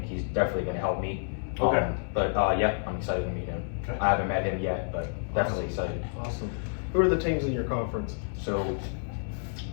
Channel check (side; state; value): right; silent; digital silence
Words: he's definitely going to help me. Okay. But I'm excited to meet him. Okay. I haven't met him yet, but definitely excited. Awesome. Who are the teams in your conference? So,